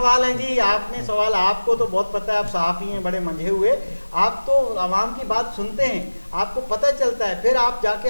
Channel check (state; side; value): inverted; both; correlation -1.00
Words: ہیں جی, آپ نے سوال, آپ کو تو بہت پتہ ہے, آپ صحافی ہیں بڑے منجھے ہوئے, آپ تو عوام کی بات سنتے ہیں, آپ کو پتہ چلتا ہے, پھر آپ جا